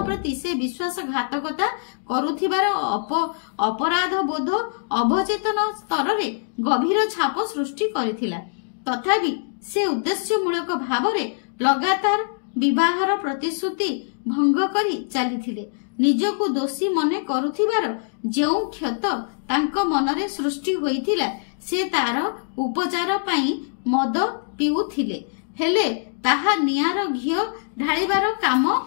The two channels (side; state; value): right; silent; digital silence